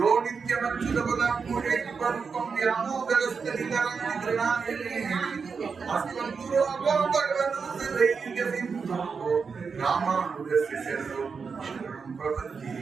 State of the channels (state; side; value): quieter; left; 5.4 dB